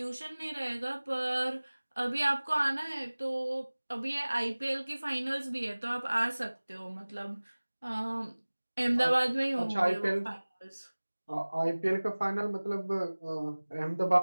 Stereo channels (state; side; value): inverted; both; correlation -1.00